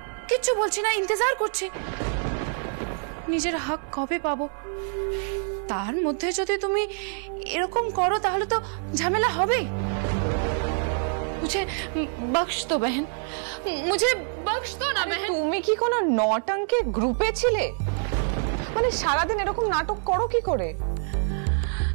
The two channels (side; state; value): left; silent; 61 dB below the other